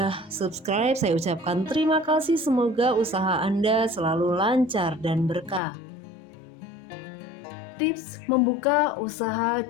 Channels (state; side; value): drops out; right; at 5.6 s